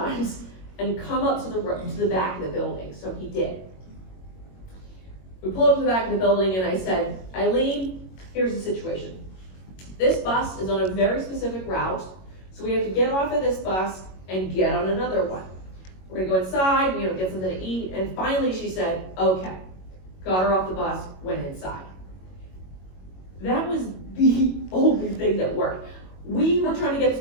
and come up to the back of the building? So he did. We pulled up to the back of the building and I said, Eileen, here's the situation. This bus is on a very specific route, so we have to get off of this bus and get on another one. We're gonna go inside, get something to eat, and finally she said, okay. Got her off the bus, went inside. That was the only thing that worked. We were trying to get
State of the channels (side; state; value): right; late; 22 ms